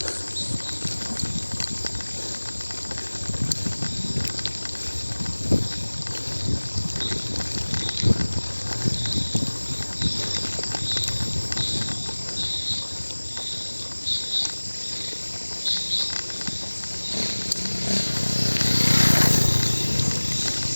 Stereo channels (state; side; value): inverted; both; correlation -1.00